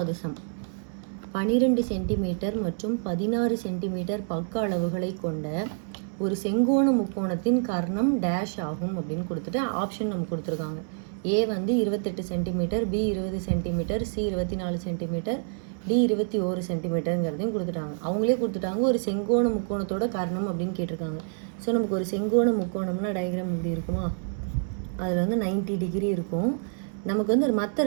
சம். 12 சென்டிமீட்டர் மற்றும் 16 சென்டிமீட்டர் பக்க அளவுகளை கொண்ட ஒரு செங்கோண முக்கோணத்தின் கர்ணம் டேஷ் ஆகும் அப்படின்னு கொடுத்துட்டு ஆப்ஷன் நமக்கு கொடுத்துருக்காங்க. ஏ வந்து 28 centimetre, B 20 centimetre, C 24 centimetre, D 21 சென்டிமீட்டருங்கிறதையும் கொடுத்துட்டாங்க. அவங்களே கொடுத்துட்டாங்க ஒரு செங்கோண முக்கோணத்தோட கர்ணம் அப்படின்னு கேட்டிருக்காங்க. ஸோ நமக்கு ஒரு செங்கோண முக்கோணம்னா டயக்ராம் இப்படி இருக்குமா, அதில் வந்து 90 டிகிரி இருக்கும். நமக்கு வந்து மற்ற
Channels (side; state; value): left; silent; 58 dB below the other